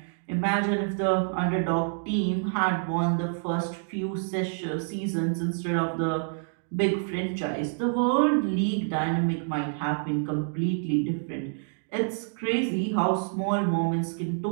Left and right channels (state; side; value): silent; left; digital silence